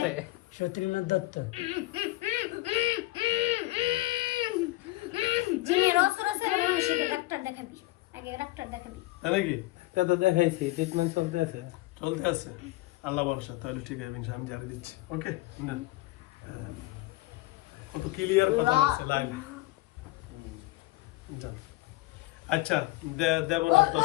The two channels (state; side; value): quieter; right; 19.6 dB